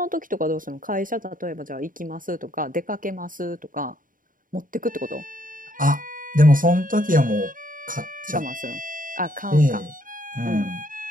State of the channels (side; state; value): left; late; 0.39 ms